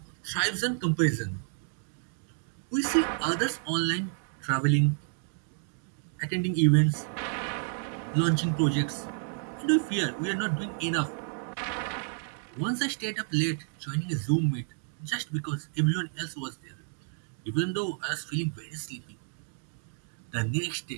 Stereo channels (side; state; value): left; silent; 57 dB below the other